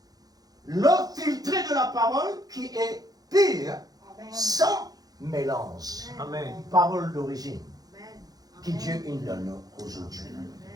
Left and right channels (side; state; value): left; late; 0.18 ms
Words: L'eau filtrée de la parole qui est pure, sans mélange. Amen. Parole d'origine, que Dieu nous donne aujourd'hui.